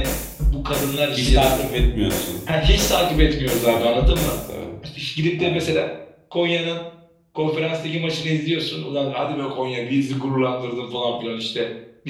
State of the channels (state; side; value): identical; both; correlation 1.00